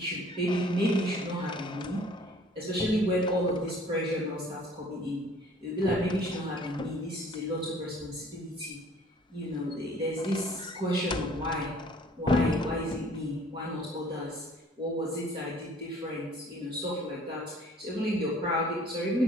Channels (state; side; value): normal; both; correlation 0.54